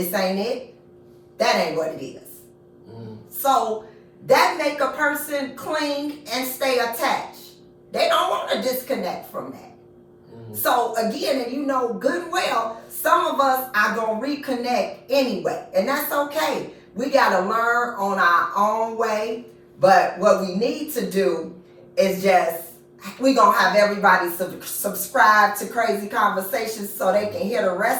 ain't it. That ain't what it is. So that make a person cling and stay attached. They don't want to disconnect from that. So again, and you know good and well, some of us are going to reconnect anyway. And that's okay. We got to learn on our own way. But what we need to do is we're going to have everybody subscribe to Crazy Conversations so they can hear the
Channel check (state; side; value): identical; both; correlation 1.00